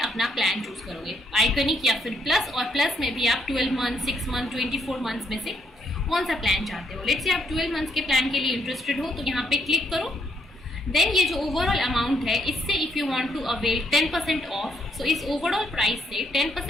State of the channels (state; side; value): normal; both; correlation 0.73